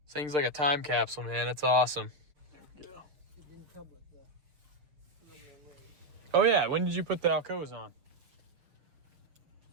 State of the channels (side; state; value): left; late; 6.3 ms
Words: This thing's like a time capsule, man. It's awesome. There we go. It didn't come with the. Oh, yeah. When did you put the Alcoas on?